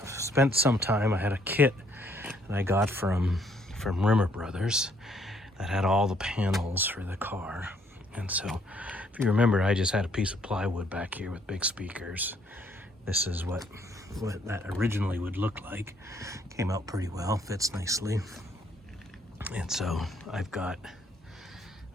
I've spent some time. I had a kit that I got from Rimmer Brothers that had all the panels for the car. And so if you remember, I just had a piece of plywood back here with big speakers. This is what that originally would look like. Came out pretty well, fits nicely. And so I've got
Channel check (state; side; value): normal; both; correlation 0.67